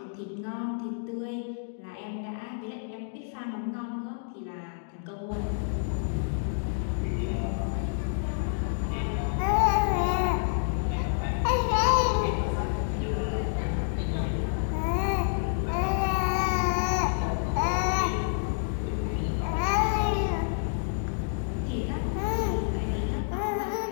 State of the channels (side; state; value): right; silent; digital silence